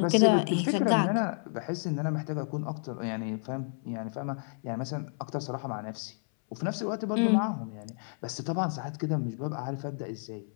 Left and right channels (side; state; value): right; silent; 57 dB below the other